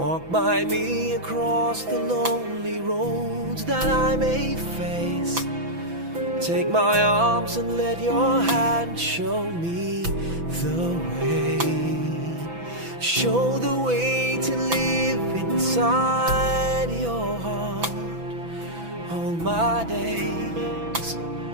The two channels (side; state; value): left; late; 6.0 ms